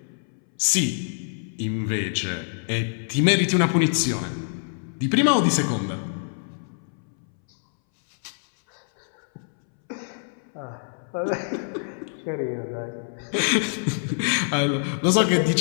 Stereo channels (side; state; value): right; silent; 62 dB below the other